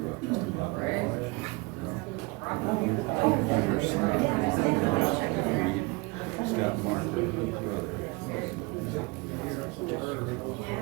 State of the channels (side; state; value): left; quieter; 26.3 dB